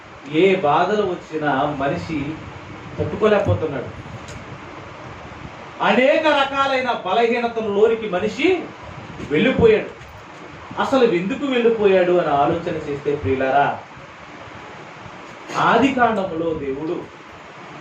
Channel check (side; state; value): both; identical; correlation 1.00